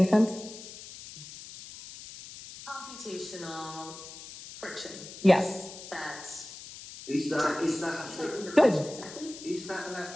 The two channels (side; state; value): left; noise; hiss, 14 dB below the sound